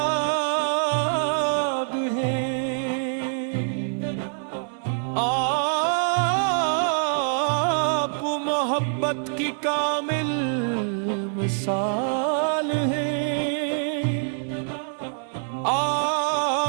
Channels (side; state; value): left; silent; 62 dB below the other